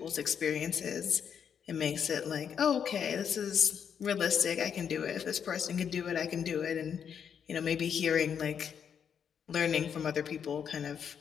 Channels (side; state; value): right; quieter; 7.7 dB